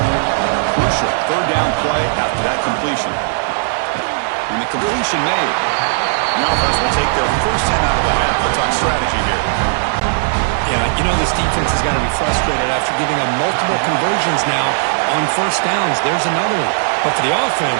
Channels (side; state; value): left; silent; 62 dB below the other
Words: Crucial third down play after that completion. And the completion made. The offense will take their first 10 out of the half. Let's talk strategy here. Yeah, you know this defense has got to be frustrated after giving up multiple conversions now on first downs. There's another one. But for the